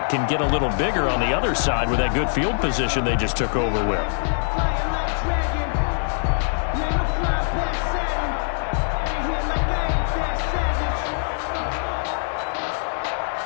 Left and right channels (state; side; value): silent; right; digital silence